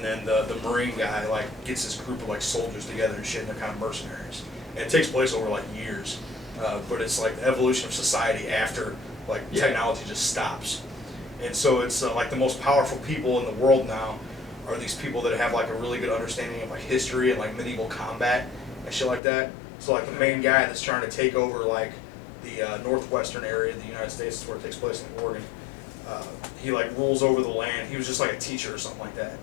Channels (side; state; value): right; drops out; at 19.2 s